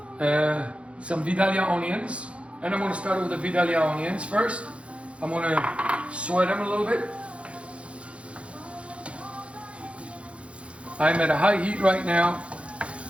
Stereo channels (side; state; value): left; late; 0.061 ms